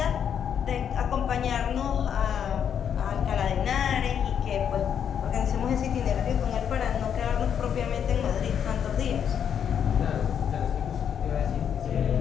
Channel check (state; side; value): quieter; right; 8.3 dB